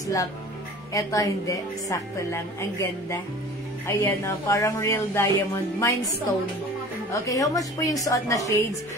Eto hindi, sakto lang. Ang ganda. Ayan, parang real diamond. Mine stone. Okay, how much po yung suot na shades?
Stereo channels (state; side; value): normal; both; correlation 0.43